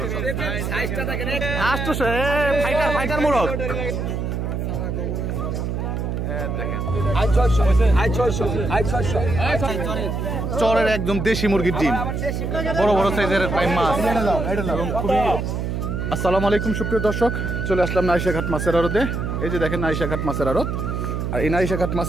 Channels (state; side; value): noise; right; hum, 2 dB below the sound